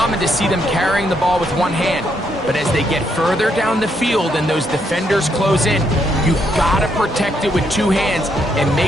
to see them carrying the ball with one hand. But as they get further down the field and those defenders close in, you've got to protect it with two hands and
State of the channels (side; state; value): both; normal; correlation 0.76